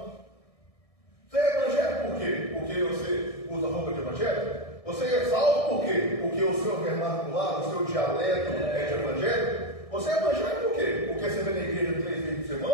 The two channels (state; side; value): late; right; 1.6 ms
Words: Você é evangélico por quê? Porque você usa roupa de evangélico? Você é salvo por quê? Porque o seu vernacular, o seu dialeto é de evangélico? Você é evangélico por quê? Porque você vem na igreja 3 vezes por